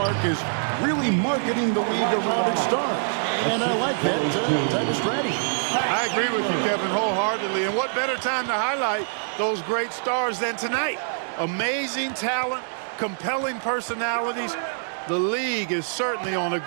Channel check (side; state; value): left; silent; digital silence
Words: is really marketing the league around its stars. And I like that type of strategy. I agree with you, Kevin, wholeheartedly. And what better time to highlight those great stars than tonight? Amazing talent, compelling personalities. The league is certainly on a